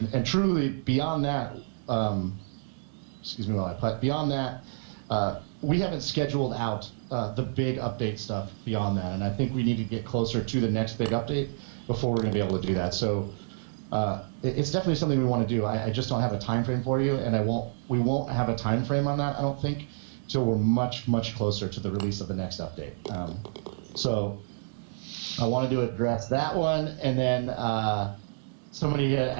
truly, beyond that, excuse me while I play. Beyond that, we haven't scheduled out the big update stuff beyond that, and I think we need to get closer to the next big update before we're going to be able to do that. So it's definitely something we want to do. I just don't have a time frame for you, and we won't have a time frame on that, I don't think, till we're much closer to the release of the next update. So I wanted to address that one, and then somebody had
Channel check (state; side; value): silent; left; digital silence